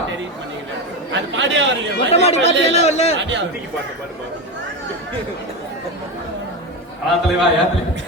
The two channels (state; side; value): normal; both; correlation 0.17